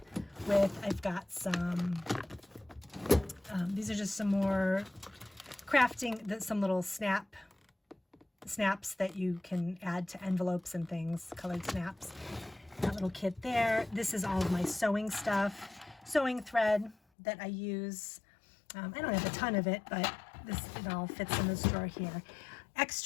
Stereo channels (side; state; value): right; drops out; at 16.9 s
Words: with. I've got some, these are just some more crafting, some little snaps that you can add to envelopes and things, colored snaps. That little kit there. This is all of my sewing stuff, sewing thread that I use. I don't have a ton of it, but it all fits in this drawer here.